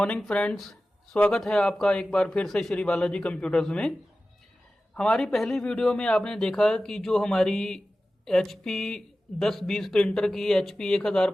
friends. स्वागत है आपका एक बार फिर से श्री बालाजी कंप्यूटर्स में। हमारी पहली वीडियो में आपने देखा कि जो हमारी HP 1020 प्रिंटर की, HP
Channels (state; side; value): normal; both; correlation 0.95